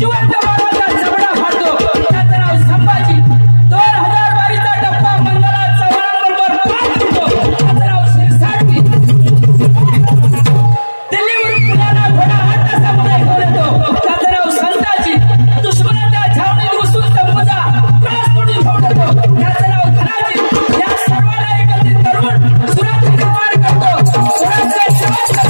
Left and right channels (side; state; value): both; inverted; correlation -1.00